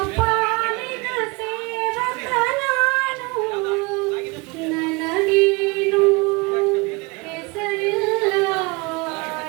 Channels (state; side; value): quieter; left; 26.9 dB